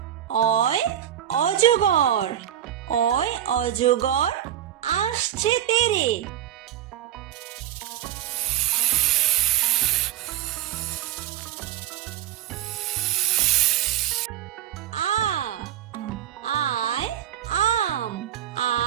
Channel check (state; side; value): quieter; left; 11.4 dB